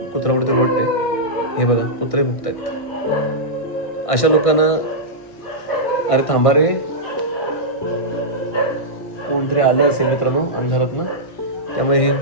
कुत्र्यापुढे रोडते. हे बघा कुत्रे भुकतायत. अशा लोकांना अरे थांबा रे कोणतरी आले असेल मित्रांनो अंधारातनं त्यामुळे हे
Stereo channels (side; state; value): right; late; 1.6 ms